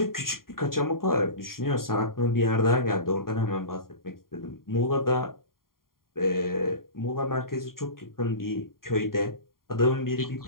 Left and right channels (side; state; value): right; late; 0.92 ms